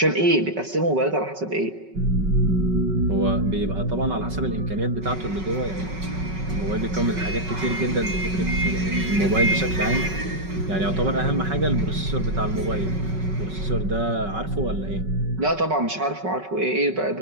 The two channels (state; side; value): late; left; 5.3 ms